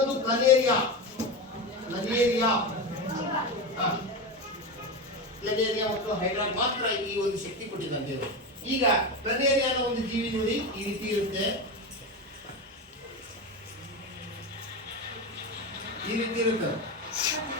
ಪ್ಲನೇರಿಯಾ. ಪ್ಲನೇರಿಯಾ ಮತ್ತು ಹೈಡ್ರಾ ಮಾತ್ರ ಈ ಒಂದು ಶಕ್ತಿ ಕೊಟ್ಟಿದ್ದಾನೆ ದೇವರು. ಈಗ ಪ್ಲನೇರಿಯಾನ ಒಂದು ಜೀವಿ ನೋಡಿ ಈ ರೀತಿ ಇರುತ್ತೆ.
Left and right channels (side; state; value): both; normal; correlation 0.19